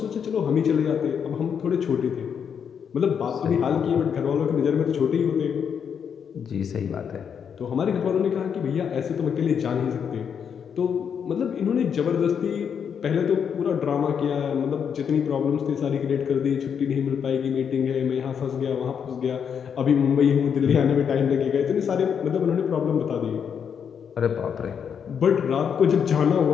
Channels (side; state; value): right; quieter; 7.4 dB